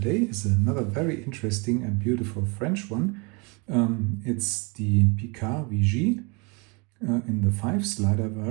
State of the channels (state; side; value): quieter; left; 30.5 dB